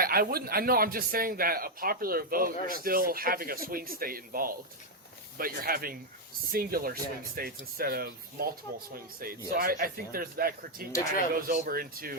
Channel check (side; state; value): both; normal; correlation 0.01